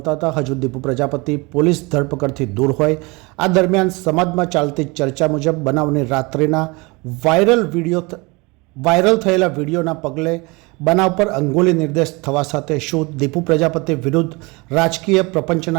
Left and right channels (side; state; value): left; quieter; 26.1 dB